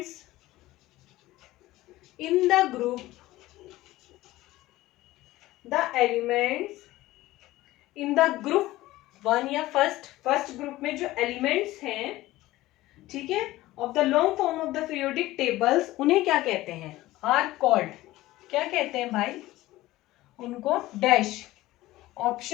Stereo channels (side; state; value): right; quieter; 17.2 dB